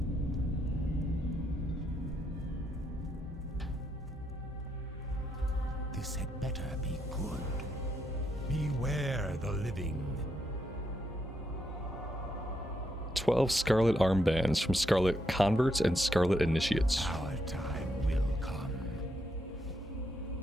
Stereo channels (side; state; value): both; normal; correlation 0.79